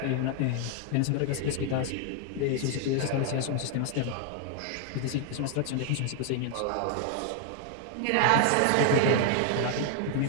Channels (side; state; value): both; different; correlation 0.00